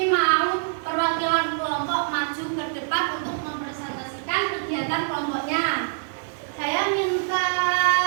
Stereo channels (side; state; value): left; silent; digital silence